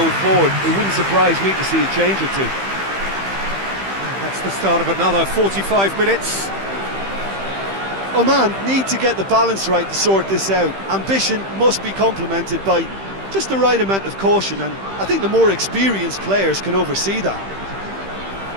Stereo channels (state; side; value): late; left; 15 ms